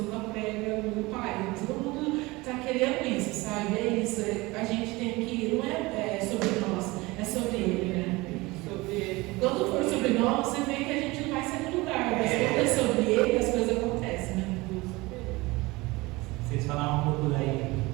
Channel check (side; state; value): left; quieter; 22.2 dB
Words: ela prega, meu pai, todo mundo tá querendo isso, sabe? É isso. A gente tem que, não é sobre nós, é sobre ele, né? Quando for sobre nós, você vê que a gente não vai sair do lugar, mas quando é sobre ele, as coisas acontecem, né? Vocês falaram um pouco daí,